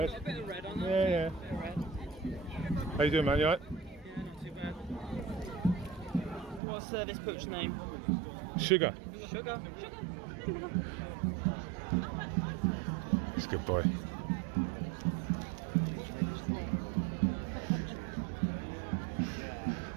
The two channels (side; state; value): left; drops out; at 6.6 s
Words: A bit of red on them. Yeah. A bit of red. How you doing, man? You alright? Yeah, not too bad. What's this book's name? Sugar. Sugar. He's a good boy.